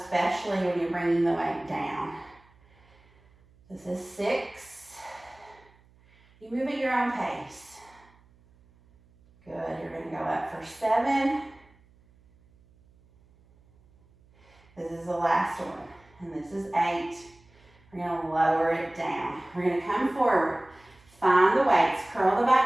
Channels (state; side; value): noise; right; hum, 30 dB below the sound